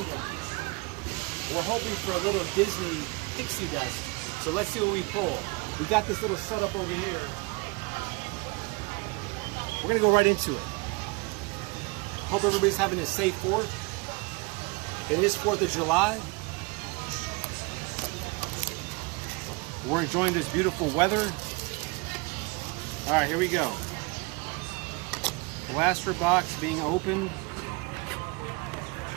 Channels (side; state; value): left; quieter; 27.7 dB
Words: We're hoping for a little Disney pixie dust. So let's see what we pull. We got this little setup over here. We're going to go right into it. Hope everybody's having a safe 4th. It is 4th of July. We're enjoying this beautiful weather. All right, here we go. Blaster box being opened.